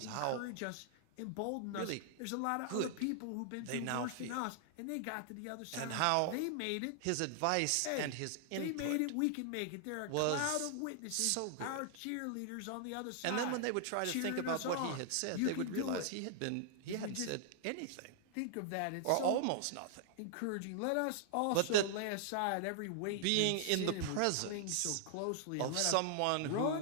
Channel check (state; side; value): different; both; correlation -0.01